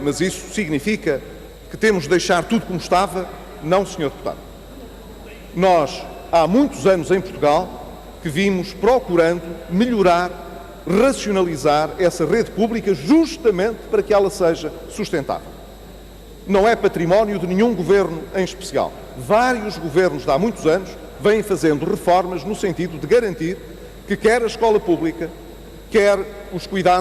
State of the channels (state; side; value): identical; both; correlation 1.00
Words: isso significa que temos de deixar tudo como estava? Não, Sr. Deputado. Nós, há muitos anos em Portugal, que vimos procurando melhorar, racionalizar essa rede pública justamente para que ela seja sustentável. Não é património de nenhum governo em especial. Vários governos de há muitos anos vêm fazendo reformas no sentido de garantir que quer a escola pública, quer os